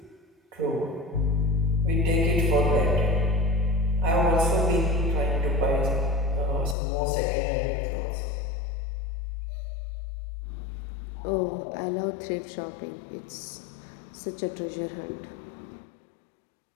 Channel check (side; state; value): right; drops out; at 6.8 s